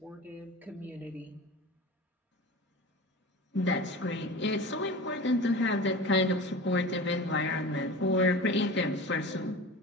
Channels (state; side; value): normal; both; correlation 0.33